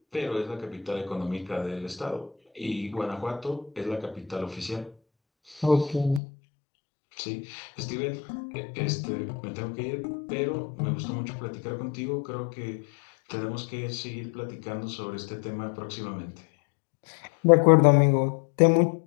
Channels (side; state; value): right; drops out; at 6.2 s